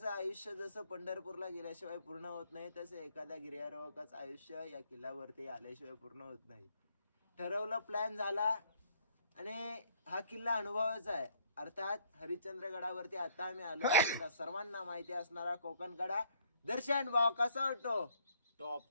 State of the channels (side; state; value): both; inverted; correlation -0.63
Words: आयुष्य जसं पंढरपूरला गेल्याशिवाय पूर्ण होत नाही, तसं एखाद्या गिर्यारोहकाचं आयुष्य या किल्ल्यावरती आल्याशिवाय पूर्ण होत नाही. ठरवलं, प्लॅन झाला आणि हा किल्ला अनुभवाचा आहे. अर्थात हरिश्चंद्रगडावरती आता आम्ही आलो. सर्वांना माहिती असणारा कोकणकडा. दर्शन भाव कसा वाटतो?